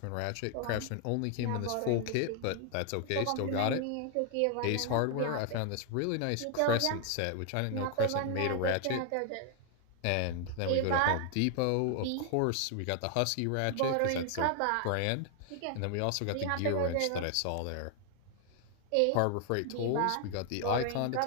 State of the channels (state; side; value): different; both; correlation 0.00